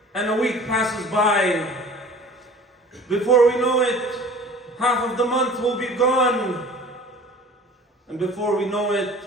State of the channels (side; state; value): both; normal; correlation 0.45